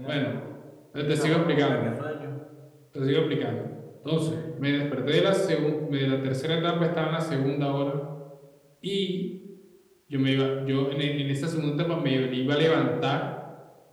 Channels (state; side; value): identical; both; correlation 1.00